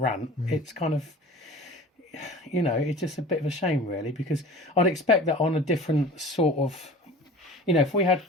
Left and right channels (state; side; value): normal; both; correlation 0.40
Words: it's kind of, it's just a bit of a shame, really, because I'd expect that on a different sort of, if we had